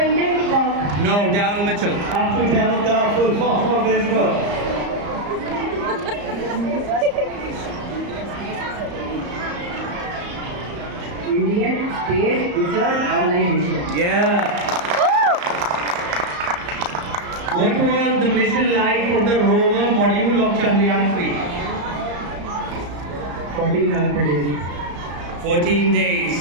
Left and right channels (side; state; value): left; late; 34 ms